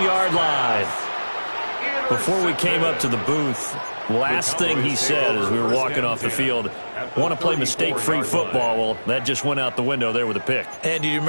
line. Before we came up to the booth, last thing he said as we were walking off the field, want to play mistake-free football. Well, that just went out the window there with a pick. And do you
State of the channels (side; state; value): both; inverted; correlation -1.00